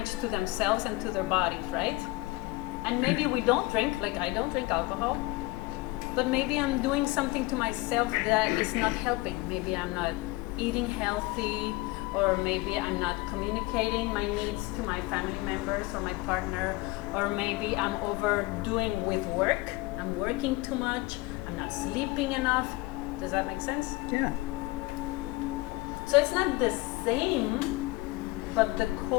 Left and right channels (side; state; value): right; quieter; 22.0 dB